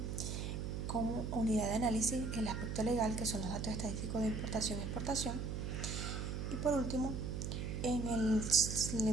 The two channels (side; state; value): right; noise; hum, 3 dB below the sound